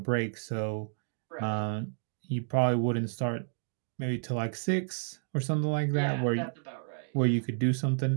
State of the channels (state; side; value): silent; left; digital silence